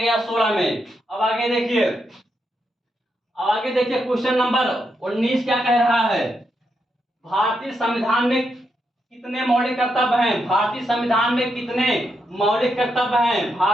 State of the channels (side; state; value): both; normal; correlation 0.82